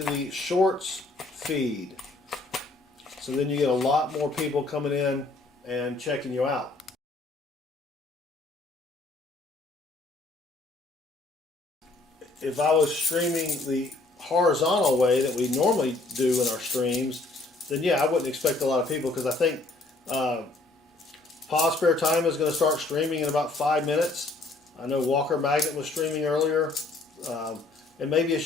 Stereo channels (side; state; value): right; quieter; 3.2 dB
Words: the shorts feed. So then you get a lot more people coming in and checking you out. If I was streaming the horizontal way that we normally do in our streams, then yeah, I wouldn't expect a lot of people because I think Pause Spare Time is going to start streaming in about 5 minutes. I know Walker Magnet was streaming earlier. And maybe